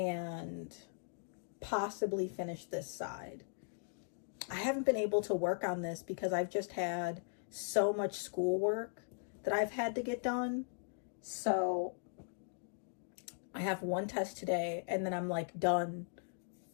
possibly finish this side. I haven't been able to work on this because I've just had so much schoolwork that I've had to get done. So I have one test today and then I'm like done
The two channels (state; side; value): silent; right; digital silence